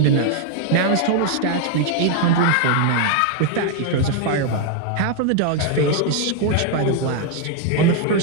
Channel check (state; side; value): different; both; correlation 0.00